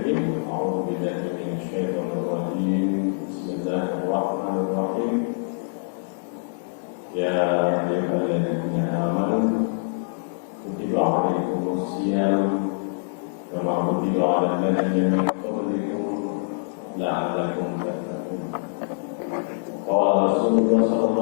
a'udzu billahi minasy syaithanir rajim. Bismillahirrahmanirrahim. Ya ayyuhalladzina amanu kutiba 'alaikumus shiyam kama kutiba 'alal ladzina min qablikum la'allakum tattaqun. Qala Rasulullah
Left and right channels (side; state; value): right; silent; digital silence